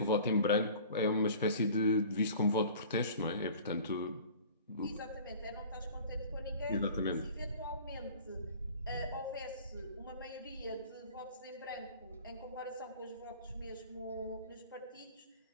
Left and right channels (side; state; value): both; inverted; correlation -0.45